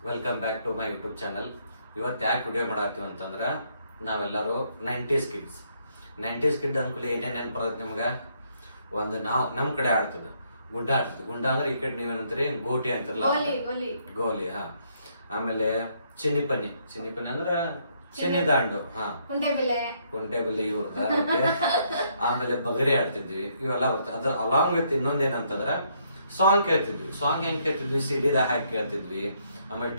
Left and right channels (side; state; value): both; inverted; correlation -0.71